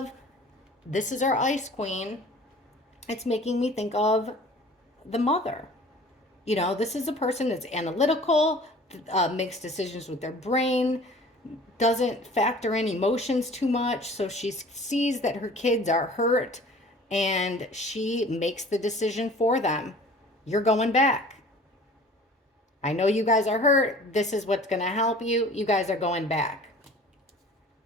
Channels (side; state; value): both; normal; correlation 0.47